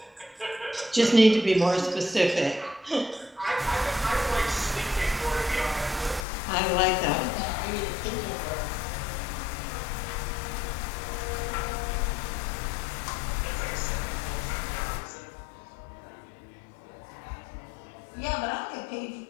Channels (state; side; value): drops out; right; at 6.2 s